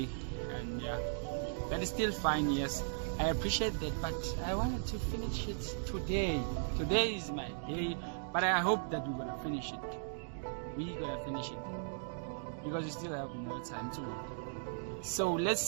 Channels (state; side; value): silent; left; digital silence